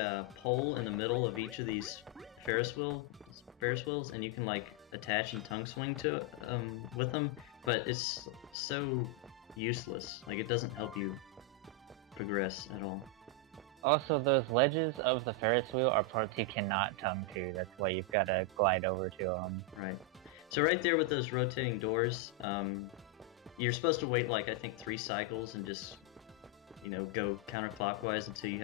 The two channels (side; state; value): both; normal; correlation 0.01